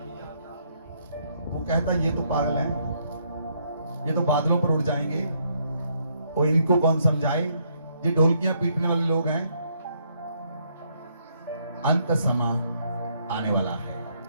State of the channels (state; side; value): inverted; both; correlation -0.72